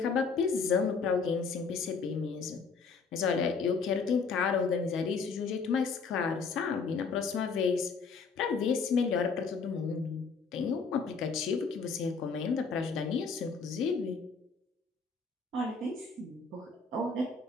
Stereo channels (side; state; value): right; quieter; 4.9 dB